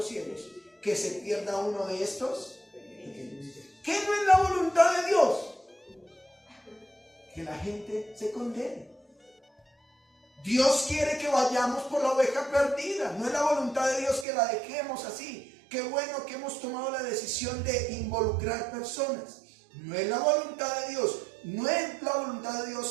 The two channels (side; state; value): left; drops out; at 14.2 s